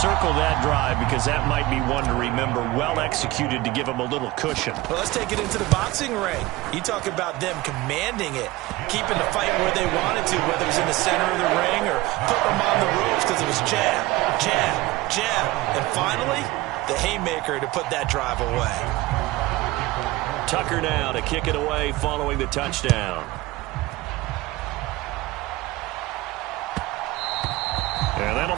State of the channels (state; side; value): quieter; left; 19.3 dB